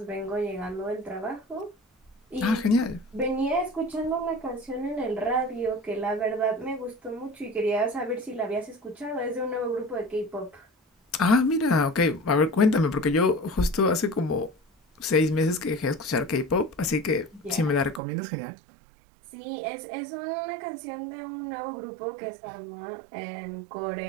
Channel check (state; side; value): drops out; left; at 18.0 s